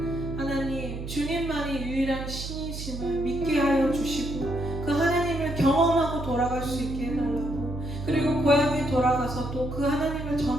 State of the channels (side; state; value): right; noise; hum, 7 dB below the sound